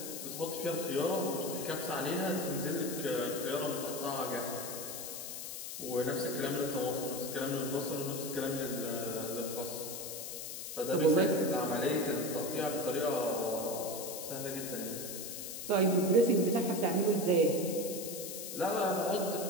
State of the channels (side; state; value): left; noise; hiss, 7 dB below the sound